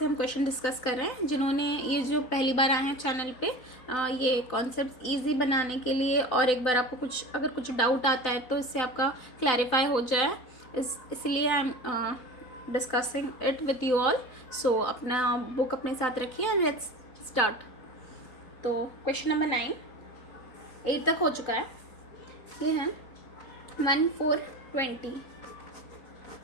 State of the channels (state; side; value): late; right; 3.9 ms